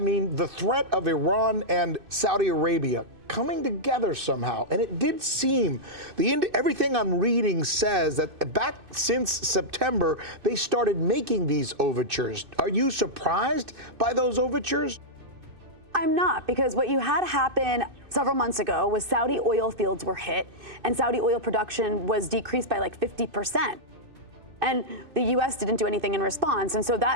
the threat of Iran and Saudi Arabia coming together somehow, and it did seem, everything I'm reading says that back since September, they started making these overtures. Are you surprised by those overtures? I'm not, because what you had happen several months ago was Saudi oil fields were hit, and Saudi oil production was decreased by like 50%. And the U.S. didn't do anything in response. And so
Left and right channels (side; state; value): left; late; 2.6 ms